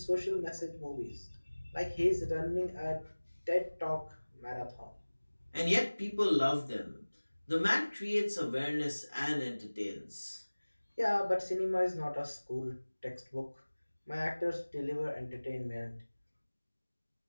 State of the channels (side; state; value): both; inverted; correlation -1.00